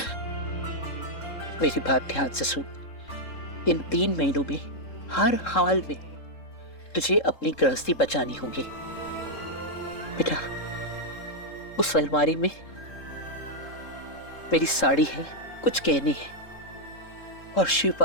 मेरी बात ध्यान से सुन। इन 3 महीनों में हर हाल में तुझे अपनी गृहस्थी बचानी होगी। बेटा, उस अलमारी में मेरी साड़ी है, कुछ गहने हैं और शिव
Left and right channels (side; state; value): right; late; 3.7 ms